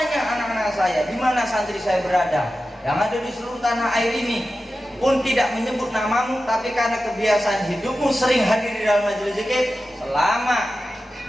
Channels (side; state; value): both; normal; correlation 0.93